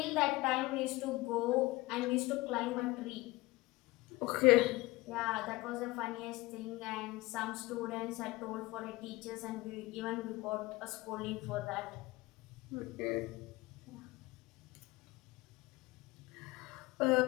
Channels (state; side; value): quieter; right; 20.8 dB